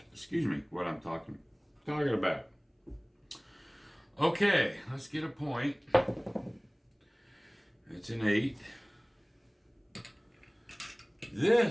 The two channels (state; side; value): identical; both; correlation 1.00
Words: what I'm talking about. Okay, let's get a point. It's an 8.